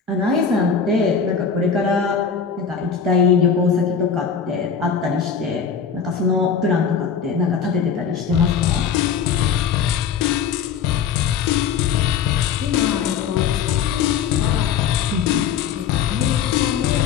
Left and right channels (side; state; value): right; quieter; 6.9 dB